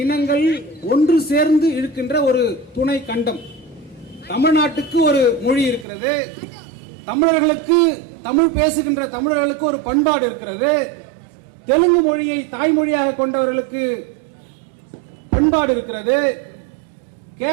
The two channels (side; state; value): left; drops out; at 5.9 s